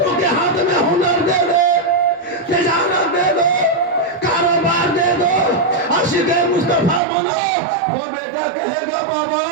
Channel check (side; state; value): left; drops out; at 7.0 s